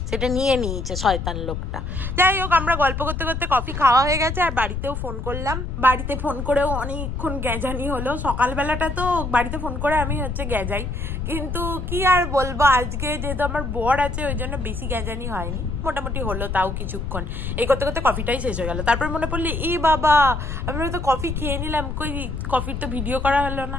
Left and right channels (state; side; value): noise; left; rumble, 4 dB below the sound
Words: সেটা নিয়ে নিয়েছে শয়তান লোকটা। যাই হোক আমরা গল্প করতে করতে কফি খাওয়া হয়ে গেছে আর বাড়িতেও ফোন করলাম। বাড়িতে ফোন করেও অনেকক্ষণ গ্যাজানি হলো। সকালবেলাটা তো বাড়িতে ফোন করে আমি হচ্ছে গ্যাজাই, কিন্তু কি আর বলবো, আজকে যেহেতু আমার বর আছে ওই জন্য বেশি গ্যাজানি হয়নি, মোটামুটি হলো তাও কিছুক্ষণ। এই করতে করতে কফিটাই শেষ হয়ে গেল। তারপর মনে পড়লো এই বাবা আমরা তো কফি খেয়ে নিলাম, কই কফির তো ভিডিও করা হলো না।